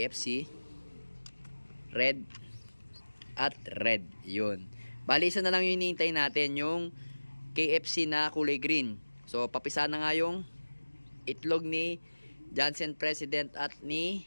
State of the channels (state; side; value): inverted; both; correlation -1.00